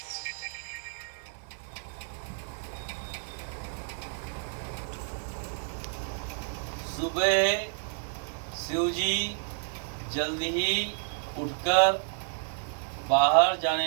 सुबह शिव जी जल्दी ही उठकर बाहर जाने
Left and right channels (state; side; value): silent; left; digital silence